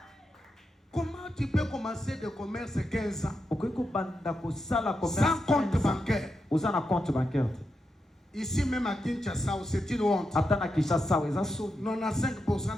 Comment tu peux commencer de commerce 15 ans sans compte bancaire? Ici même à Kinshasa, c'est une honte. 95%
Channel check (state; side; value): normal; both; correlation 0.86